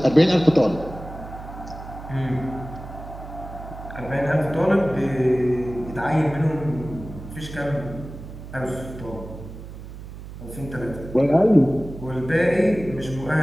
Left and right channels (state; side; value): noise; right; hum, 13 dB below the sound